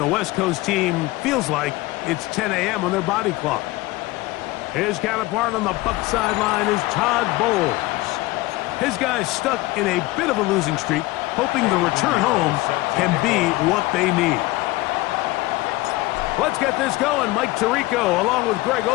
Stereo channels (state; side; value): quieter; right; 19.6 dB